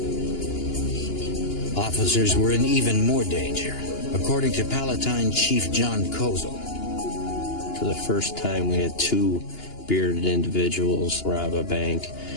Officers were in even more danger, according to Palatine Chief John Kozel. For the first time, we had two bearded individuals rob a bank.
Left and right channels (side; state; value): right; late; 2.9 ms